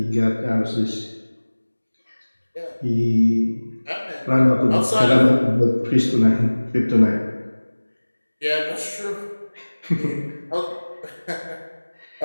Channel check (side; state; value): both; inverted; correlation -1.00